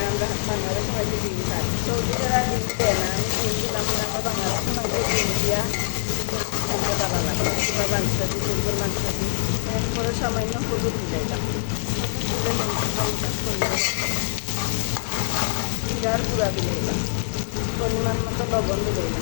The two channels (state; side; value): silent; right; 63 dB below the other